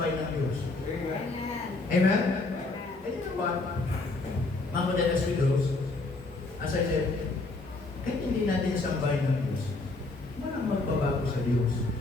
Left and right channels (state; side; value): quieter; right; 3.3 dB